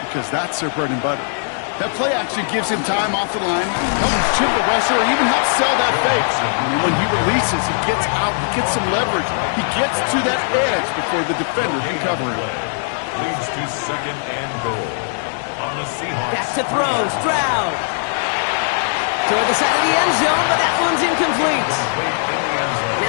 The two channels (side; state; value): right; silent; 66 dB below the other